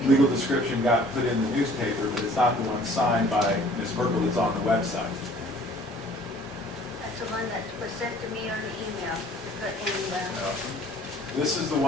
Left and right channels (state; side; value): normal; both; correlation 0.53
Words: legal description got put in the newspaper, but it's not the one signed by Ms. Merkel that's on the website. That's the one that was sent to me on the email to put in the... This is the